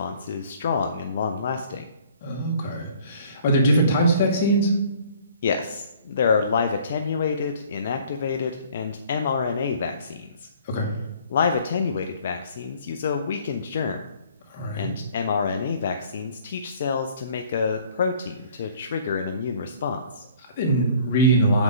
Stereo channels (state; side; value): inverted; both; correlation -0.54